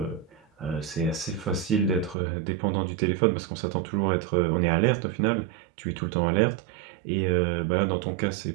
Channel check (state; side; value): drops out; left; at 2.1 s